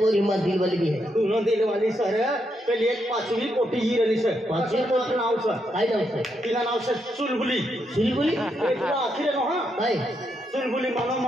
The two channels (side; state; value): both; normal; correlation 0.80